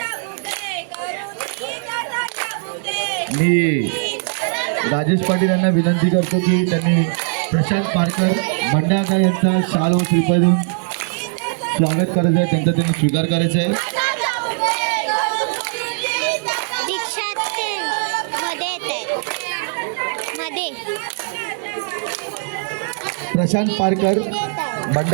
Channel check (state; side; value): silent; left; 66 dB below the other